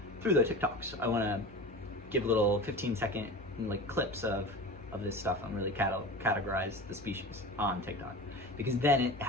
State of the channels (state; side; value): normal; both; correlation 0.32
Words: the TikToks. I want to give little 15-second like clips of this stuff and really categorize the species on TikTok, because then it